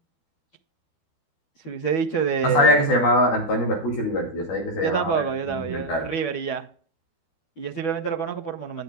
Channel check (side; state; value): right; late; 12 ms